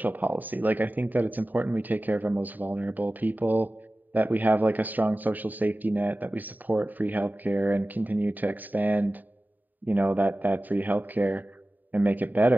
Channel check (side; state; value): left; late; 0.087 ms